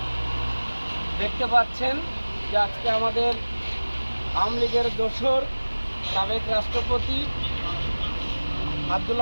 দেখতে পাচ্ছেন যে আজকে আমাদের আওয়ামী লীগের দোসর সাবেক রাষ্ট্রপতি আব্দুল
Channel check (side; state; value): both; inverted; correlation -1.00